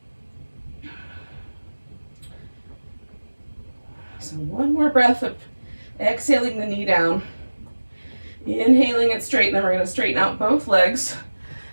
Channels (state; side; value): inverted; both; correlation -1.00